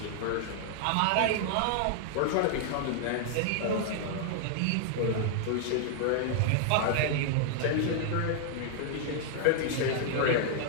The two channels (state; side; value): different; both; correlation 0.00